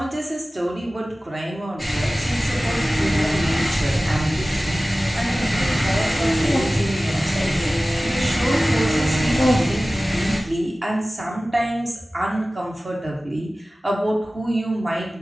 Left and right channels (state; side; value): normal; both; correlation 0.97